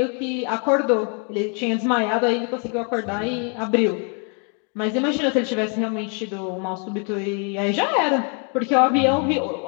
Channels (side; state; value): right; quieter; 38.1 dB